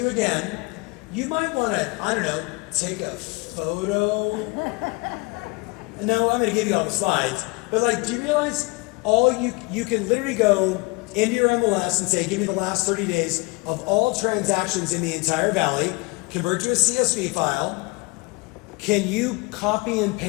again. You might want to, I don't know, take a photo. No, I'm going to give you all the slides. But like, do you realize you can literally go into your MLS and say, give me the last 30 days of all transactions in the entire valley, convert to a CSV file. Can you copy and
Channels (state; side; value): quieter; right; 26.4 dB